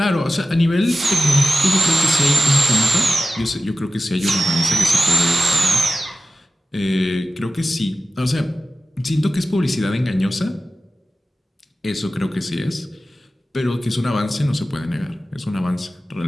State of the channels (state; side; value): normal; both; correlation 0.95